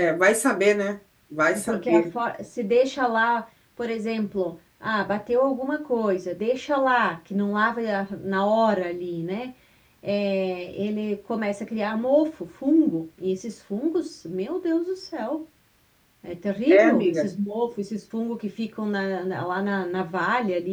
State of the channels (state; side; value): identical; both; correlation 1.00